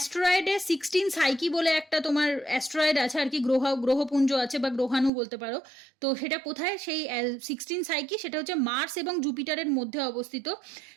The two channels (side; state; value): left; drops out; at 5.1 s